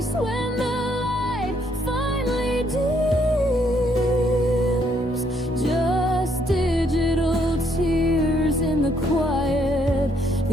when the light finally dims. Just digital tears in the quiet,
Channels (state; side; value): normal; both; correlation 0.70